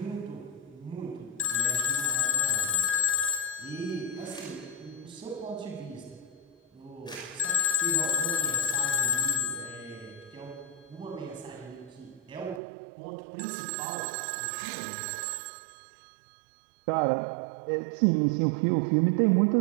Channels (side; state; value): left; drops out; at 12.6 s